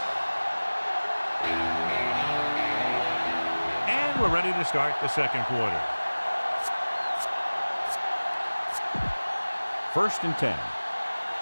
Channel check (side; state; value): both; inverted; correlation -1.00